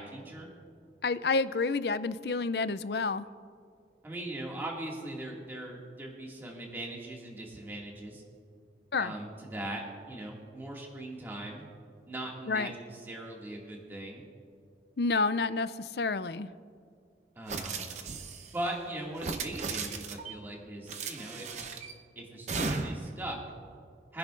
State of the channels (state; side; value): normal; both; correlation 0.14